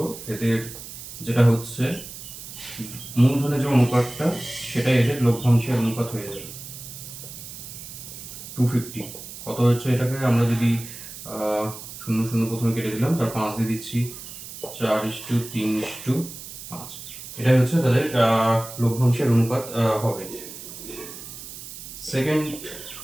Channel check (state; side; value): noise; right; hiss, 12 dB below the sound